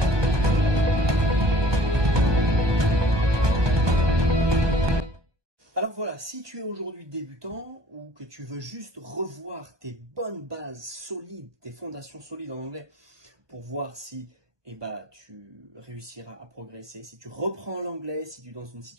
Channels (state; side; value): late; left; 1.2 ms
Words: Alors voilà, si tu es aujourd'hui débutant ou que tu veux juste revoir tes bonnes bases solides, tes fondations solides en anglais pour voir si tu réussiras à progresser, si tu reprends l'anglais, si tu es dans une